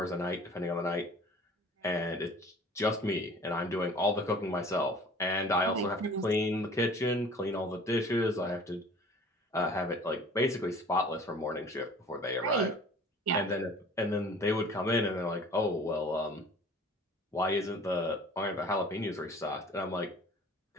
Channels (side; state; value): both; normal; correlation 0.47